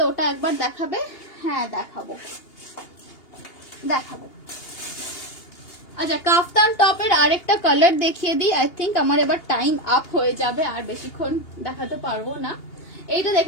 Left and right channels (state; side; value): late; right; 2.8 ms